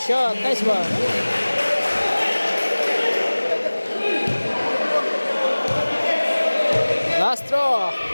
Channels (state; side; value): inverted; both; correlation -1.00